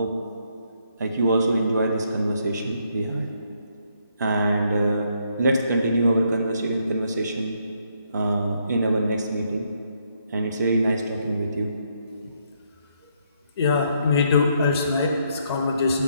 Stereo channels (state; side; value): inverted; both; correlation -0.73